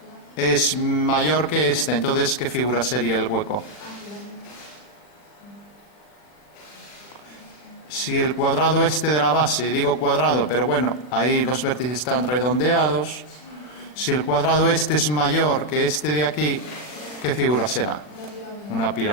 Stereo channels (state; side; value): late; right; 40 ms